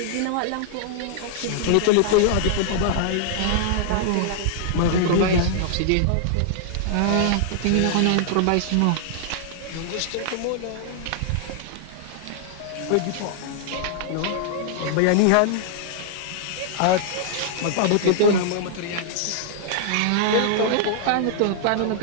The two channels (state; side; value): different; both; correlation -0.01